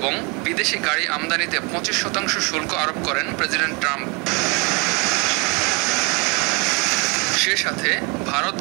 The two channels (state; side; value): quieter; left; 30.6 dB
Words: বিদেশি গাড়ি আমদানিতে 25% শুল্ক আরোপ করেন প্রেসিডেন্ট ট্রাম্প। সে সাথে ভারত,